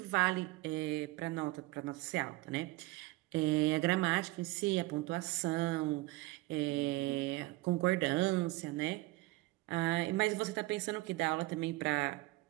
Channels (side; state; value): left; quieter; 20.4 dB